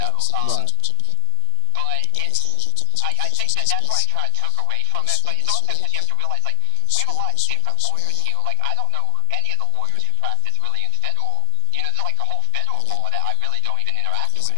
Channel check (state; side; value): different; both; correlation 0.00